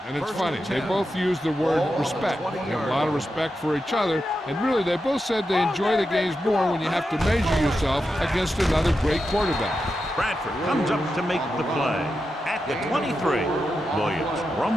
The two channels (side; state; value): both; normal; correlation 0.88